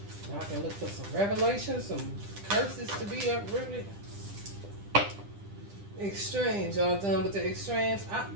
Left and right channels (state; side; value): late; left; 10 ms